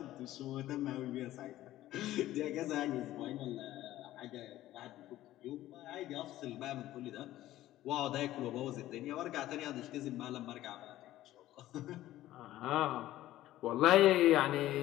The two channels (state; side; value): quieter; right; 14.7 dB